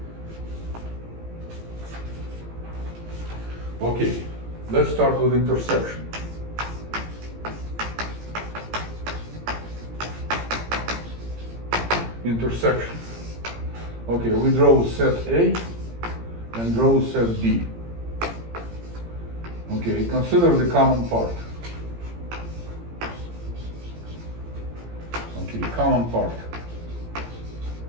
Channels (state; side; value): late; left; 17 ms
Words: Okay, let's start with intersection. Intersection. Okay, we draw set A and draw set B. Okay, consider the common part. Okay, common part.